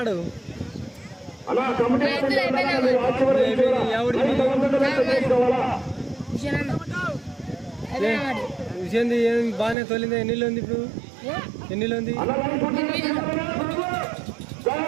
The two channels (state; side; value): drops out; left; at 9.8 s